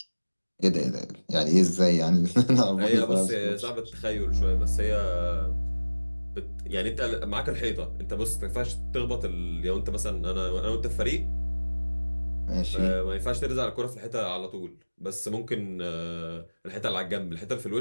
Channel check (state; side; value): inverted; both; correlation -1.00